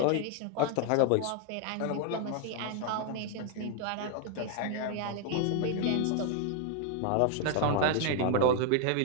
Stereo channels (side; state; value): both; different; correlation 0.00